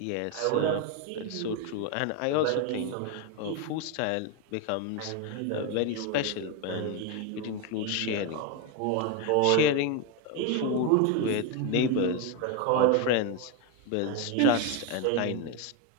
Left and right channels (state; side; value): different; both; correlation 0.02